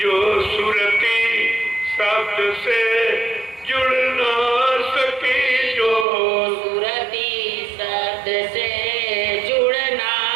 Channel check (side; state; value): left; drops out; at 6.1 s